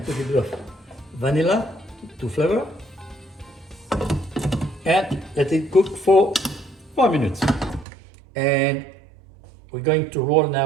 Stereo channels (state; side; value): drops out; left; at 7.9 s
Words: put a bit of vanilla to flavor and let it cook for 4 minutes. And we're going to roll